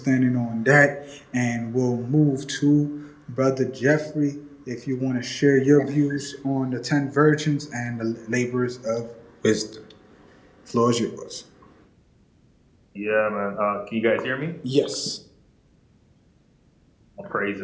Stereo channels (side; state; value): both; identical; correlation 1.00